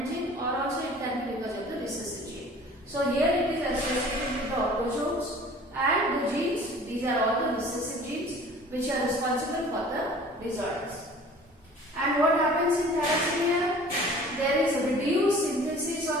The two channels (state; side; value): normal; both; correlation 0.47